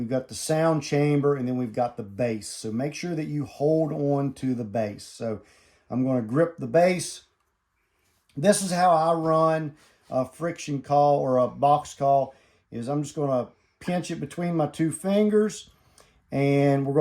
got the sound chamber, and then we've got the base. So make sure that you hold on to the base. So I'm going to grip the base. This is how I run a friction call or a box call, is I'm just going to pinch it between my two fingers, and we're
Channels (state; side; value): identical; both; correlation 1.00